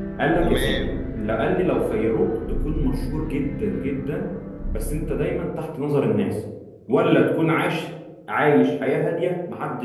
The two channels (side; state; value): both; identical; correlation 1.00